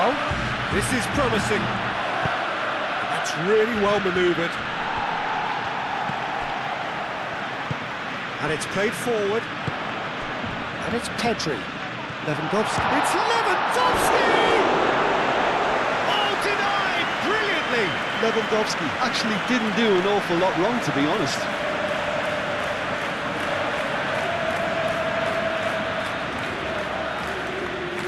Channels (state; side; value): identical; both; correlation 1.00